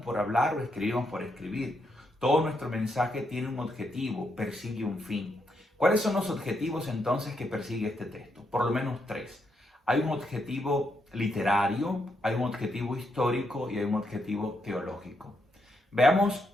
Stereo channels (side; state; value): both; normal; correlation 0.79